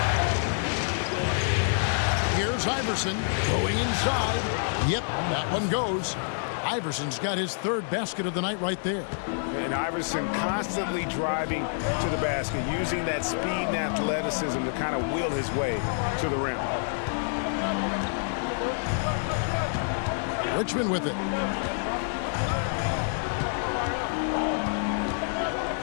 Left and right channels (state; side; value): silent; right; digital silence